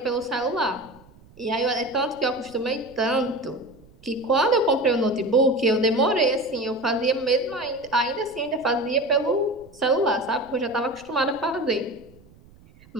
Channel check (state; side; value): noise; right; rumble, 25 dB below the sound